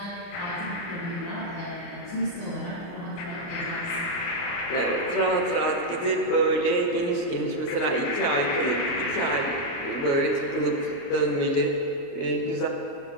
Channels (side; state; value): right; late; 29 ms